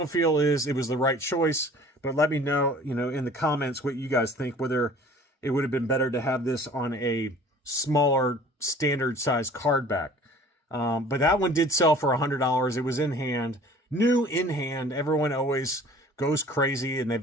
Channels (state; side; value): normal; both; correlation 0.48